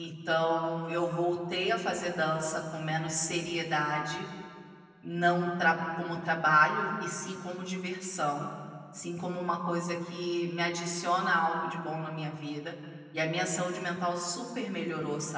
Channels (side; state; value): both; identical; correlation 1.00